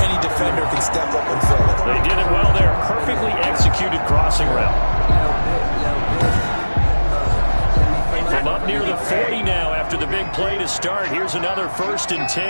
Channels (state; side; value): inverted; both; correlation -1.00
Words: any defender can step up and fill it. They did it well there. Perfectly executed crossing route. From up near the 40 now after the big play to start. Here's another 1st and